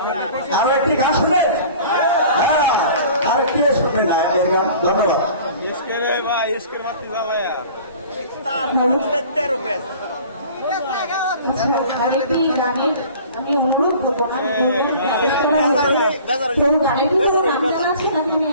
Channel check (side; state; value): both; inverted; correlation -0.46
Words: আরো একটি গান শুনে আর কি শুনে না গান ধন্যবাদ। আরেকটি গানের আমি অনুরোধ করবো